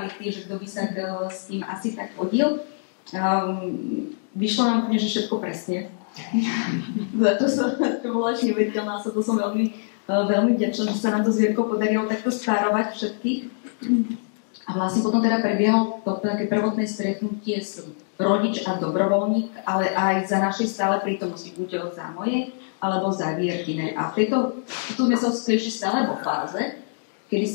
že kto by sa s tým asi tak hodil. Vyšlo nám úplne, že všetko presne. Za to som bola až neuveriteľná, to som veľmi vďačná, že sa nám to s Vierkou podarilo takto stárovať všetkých. A vlastne potom teda prebiehalo to také prvotné stretnutie s rodič a dobrovoľník, ale aj za našej stále prítomnosti, buď za mojej, alebo za Vierkinej. A tu sme sa ešte stále vo fáze, kedy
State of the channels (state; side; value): silent; right; digital silence